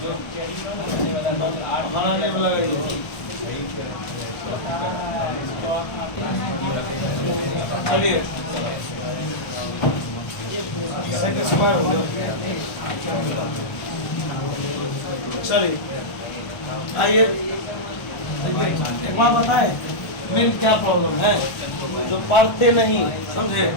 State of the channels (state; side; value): late; right; 1.4 ms